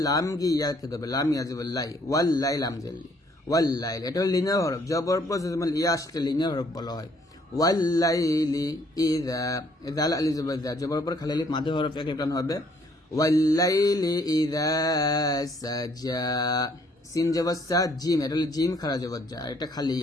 লাম গি ইয়াকে ধরবে, লাম ইয়া জবর লাই, ওয়াল লাই লাম জেলি, ওয়াল লাইল, এটা হলো লিনিয়ার হরফ। জবর পর ইয়া আসলে লিনিয়ার হরফ বলা হয়। ওয়াল লাইলি ইযা, জাল আলি জবর জা, জবর পর খালি আলিফ মাঝে হরফ এক টান হবে। ওয়াল লাইলি ইযা সাজা, সিন জবর সা, জিম, এটা হলো জিম খারা জবর যা, এটা খালি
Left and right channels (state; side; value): normal; both; correlation 0.64